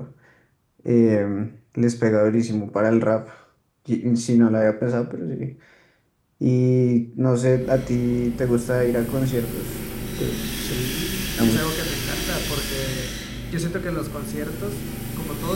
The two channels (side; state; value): both; identical; correlation 1.00